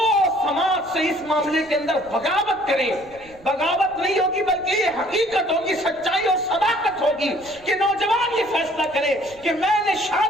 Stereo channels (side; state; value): right; noise; rumble, 25 dB below the sound